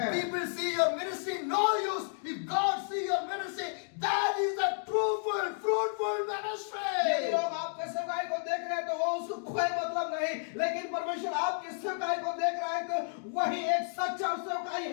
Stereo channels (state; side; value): silent; right; digital silence